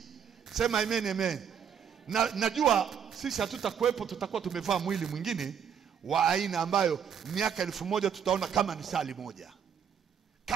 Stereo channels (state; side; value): quieter; left; 7.9 dB